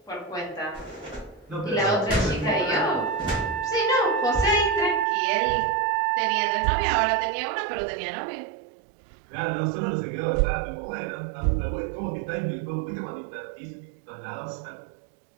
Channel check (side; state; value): left; drops out; at 5.1 s